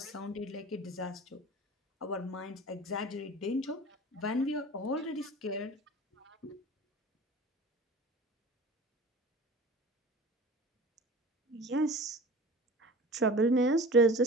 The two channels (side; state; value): both; normal; correlation 0.39